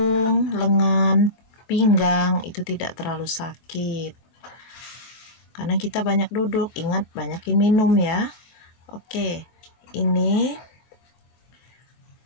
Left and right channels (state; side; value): late; right; 24 ms